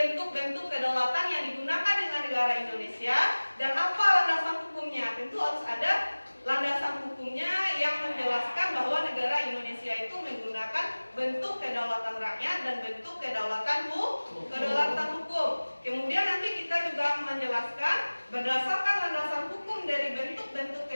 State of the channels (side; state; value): both; inverted; correlation -1.00